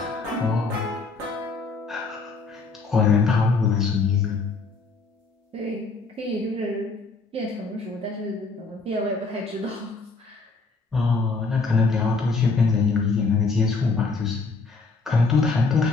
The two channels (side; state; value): right; quieter; 4.1 dB